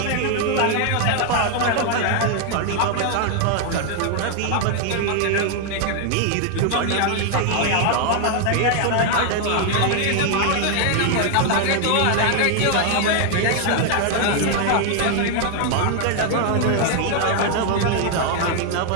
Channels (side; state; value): both; different; correlation 0.00